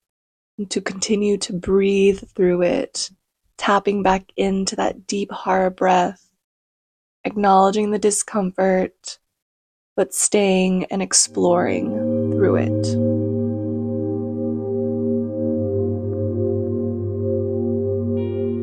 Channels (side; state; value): both; identical; correlation 1.00